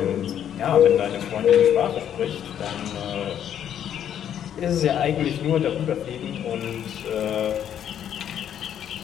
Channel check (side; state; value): right; quieter; 9.7 dB